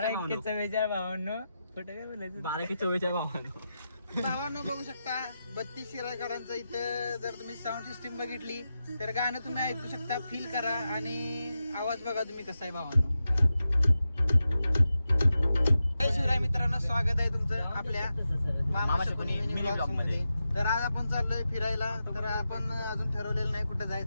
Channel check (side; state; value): both; inverted; correlation -0.90